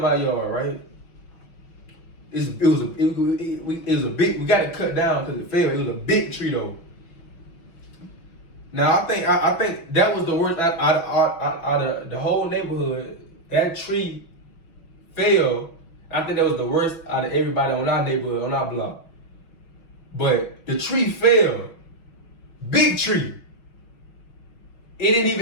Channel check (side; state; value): right; late; 6.2 ms